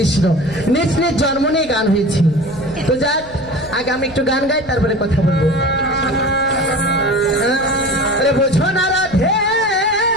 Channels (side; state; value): right; noise; rumble, 19 dB below the sound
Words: নিজ নিজ জন্ম নিয়ে গান হয়েছে। তো যাক, আগে আমি একটু গান গাই, তারপরে কথা বলবো। আরে বোঝো না রাধে